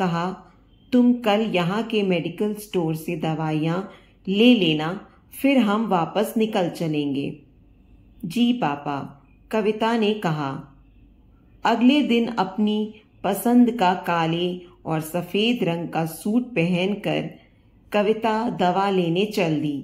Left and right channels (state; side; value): identical; both; correlation 1.00